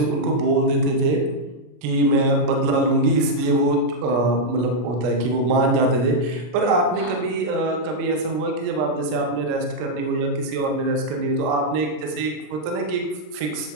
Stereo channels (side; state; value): left; late; 33 ms